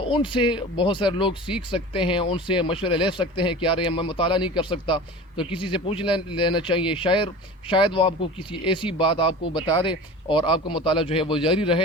ان سے بہت سارے لوگ سیکھ سکتے ہیں, ان سے مشورے لے سکتے ہیں کہ یار میں مطالعہ نہیں کر سکتا تو کسی سے پوچھ لینا چاہیے. شاید وہ آپ کو کسی ایسی بات آپ کو بتا دے اور آپ کا مطالعہ جو ہے وہ جاری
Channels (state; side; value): normal; both; correlation 0.35